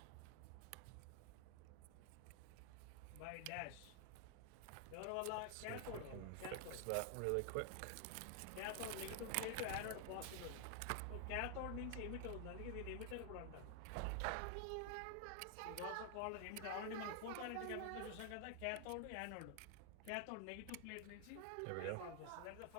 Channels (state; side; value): different; both; correlation 0.00